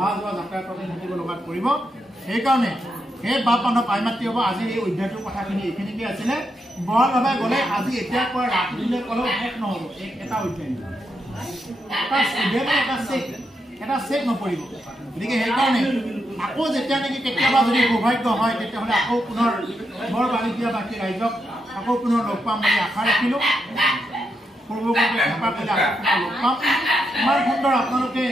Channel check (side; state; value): both; normal; correlation 0.83